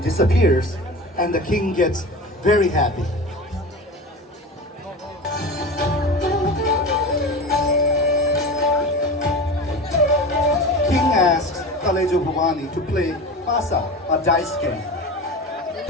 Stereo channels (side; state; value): both; normal; correlation 0.30